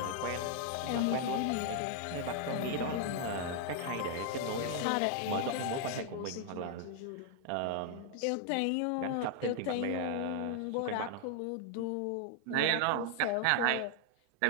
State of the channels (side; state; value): both; different; correlation 0.00